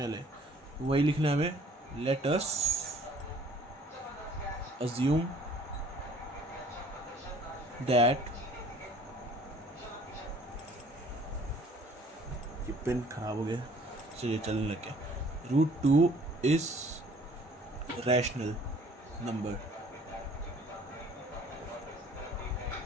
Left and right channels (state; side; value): normal; both; correlation 0.55